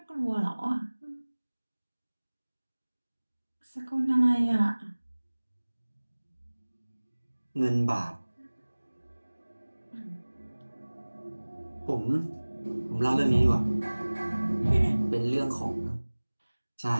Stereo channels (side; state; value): both; inverted; correlation -1.00